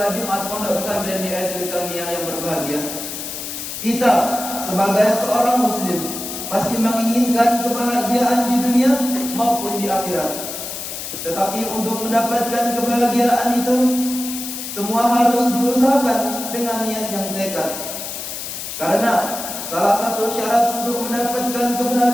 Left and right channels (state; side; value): noise; left; hiss, 7 dB below the sound